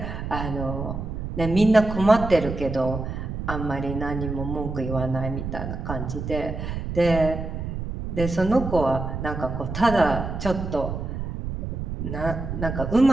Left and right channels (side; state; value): right; noise; rumble, 5 dB below the sound